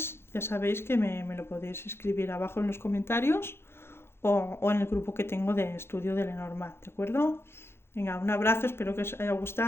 ya sabéis que me lo podéis escribir abajo en los comentarios o en el grupo que tengo de estudio de Lenormand, ¿de acuerdo? Venga, un abrazo, espero que os haya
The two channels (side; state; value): right; late; 0.12 ms